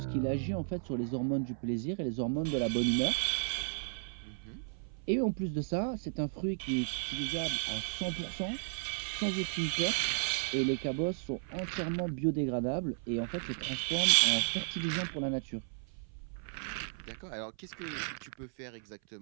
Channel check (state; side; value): silent; left; 55 dB below the other